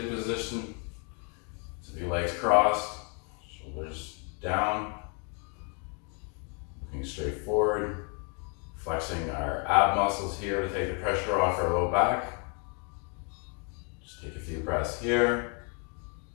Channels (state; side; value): quieter; right; 37.5 dB